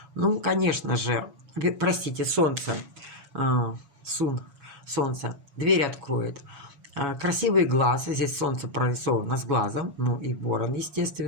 Ну, конечно же, простите, Солнце. Солнце. Дверь откроет. Красивый глаз, здесь солнце прорисовано с глазом, ну и ворон,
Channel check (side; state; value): left; late; 7.2 ms